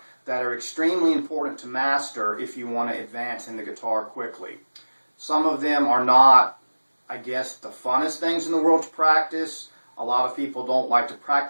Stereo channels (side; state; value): both; inverted; correlation -1.00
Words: that are extremely important to master if you want to advance in the guitar quickly. Some of them are not, I guess, the funnest things in the world to practice. A lot of people don't like to